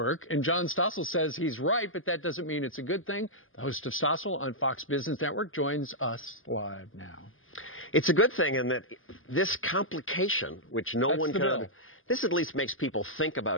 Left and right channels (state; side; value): late; right; 0.59 ms